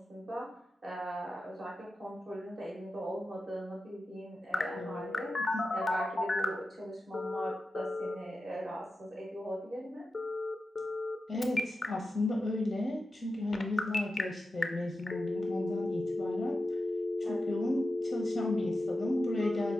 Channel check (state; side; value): normal; both; correlation 0.92